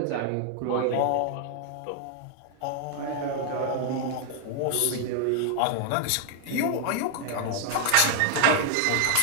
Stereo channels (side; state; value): both; different; correlation 0.00